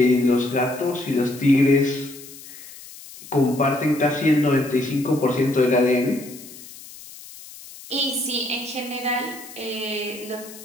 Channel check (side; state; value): left; noise; hiss, 17 dB below the sound